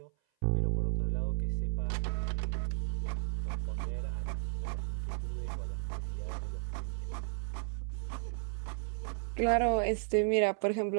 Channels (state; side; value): silent; left; 55 dB below the other